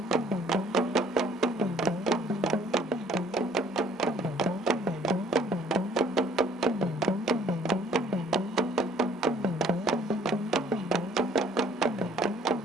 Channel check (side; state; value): both; normal; correlation 0.58